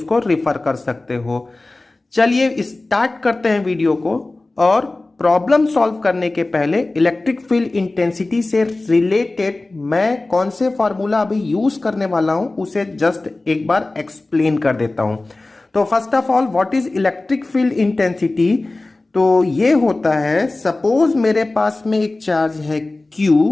रेफर कर सकते हो। चलिए स्टार्ट करते हैं वीडियो को। और प्रॉब्लम सॉल्व करने के पहले इलेक्ट्रिक फील्ड इंटेंसिटी से रिलेटेड मैं कौन से फार्मूला अभी यूज करने वाला हूं उसे जस्ट एक बार एक्सप्लेन कर देता हूं। तो first of all, what is electric field intensity? तो ये होता है, सपोज मेरे पास में एक चार्ज है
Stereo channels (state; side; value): quieter; right; 3.0 dB